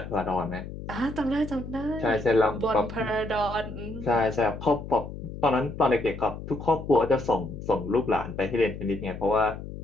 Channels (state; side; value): noise; left; hum, 10 dB below the sound